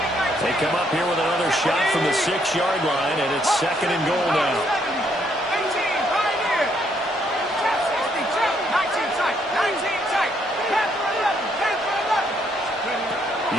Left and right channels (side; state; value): both; normal; correlation 0.72